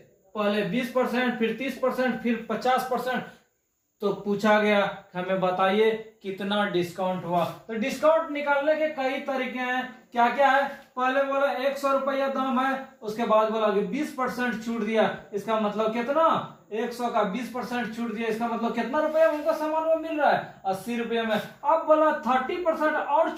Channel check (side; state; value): both; identical; correlation 1.00